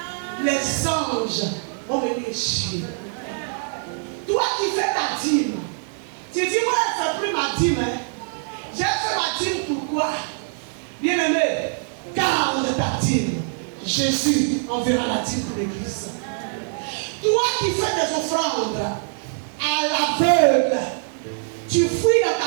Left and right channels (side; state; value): left; silent; 63 dB below the other